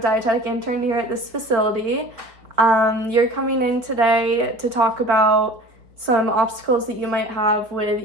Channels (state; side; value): late; left; 4.4 ms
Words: intern here at this facility. You're coming in today to talk about some obstacles that you might have with